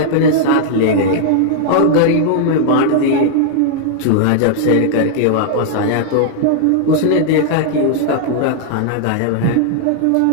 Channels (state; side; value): different; both; correlation -0.01